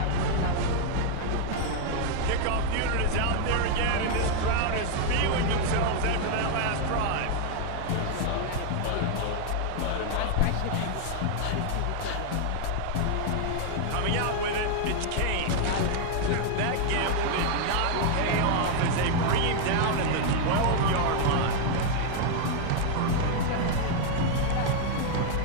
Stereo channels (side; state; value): both; different; correlation 0.00